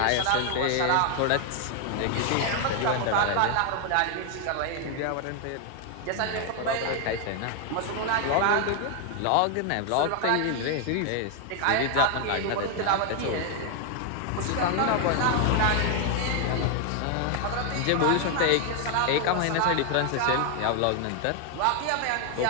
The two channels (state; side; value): different; both; correlation 0.01